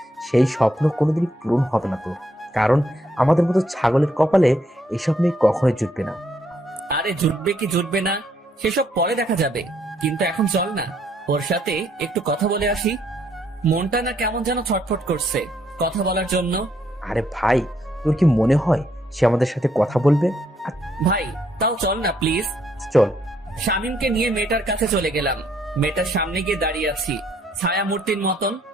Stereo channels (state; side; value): normal; both; correlation 0.71